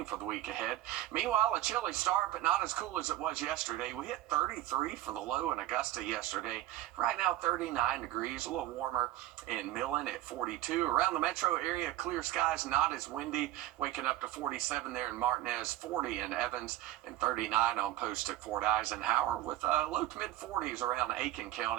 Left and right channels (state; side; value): quieter; left; 14.6 dB